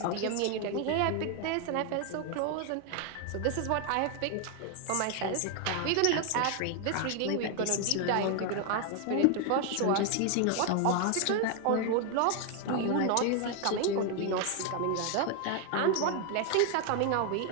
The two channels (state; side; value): different; both; correlation 0.01